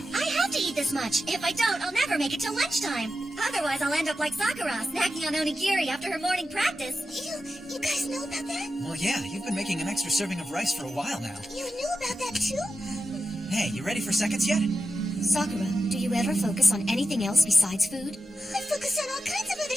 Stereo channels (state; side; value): normal; both; correlation 0.91